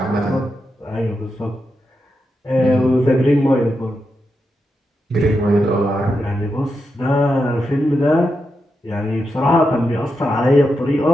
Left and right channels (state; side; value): normal; both; correlation 0.86